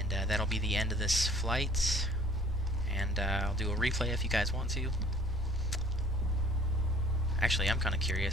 that'll be the end of this flight. And I'll do a replay if you guys want to. Actually, I'm kind of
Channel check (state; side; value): normal; both; correlation 0.53